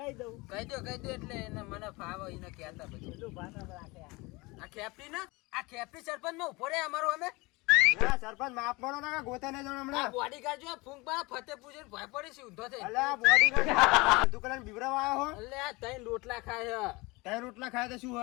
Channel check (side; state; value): right; quieter; 24.2 dB